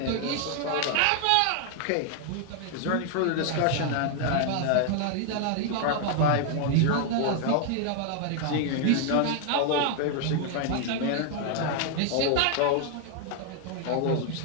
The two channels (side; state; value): both; different; correlation 0.00